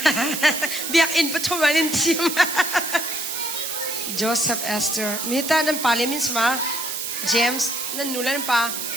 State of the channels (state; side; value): noise; right; hiss, 4 dB below the sound